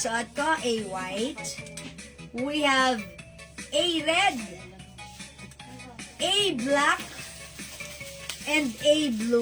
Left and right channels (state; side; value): identical; both; correlation 1.00